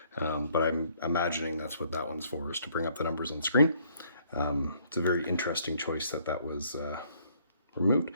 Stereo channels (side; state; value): both; inverted; correlation -0.65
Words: but I'm imagining that's what that one's for, is to bring up the numbers on screen. It's a very interesting choice that was removed,